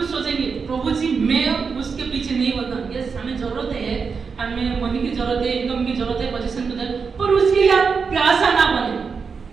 सोचेंगे प्रभु जी मैं उसके पीछे नहीं होता, यस हमें जरूरत है, हमें मनी की जरूरत है, इनकम की जरूरत है, पोजीशन की जरूरत, पर उसके लिए आप प्यासा ना बने,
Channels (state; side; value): quieter; left; 5.4 dB